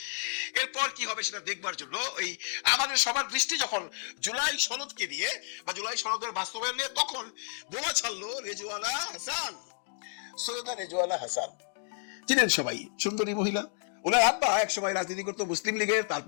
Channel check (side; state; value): right; silent; 57 dB below the other